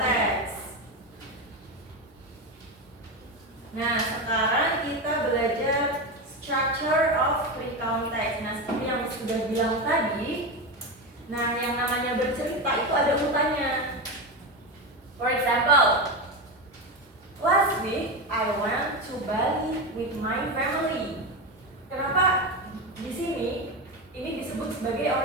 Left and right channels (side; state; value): both; normal; correlation 0.16